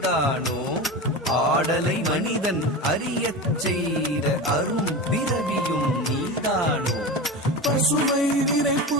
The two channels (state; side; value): normal; both; correlation 0.26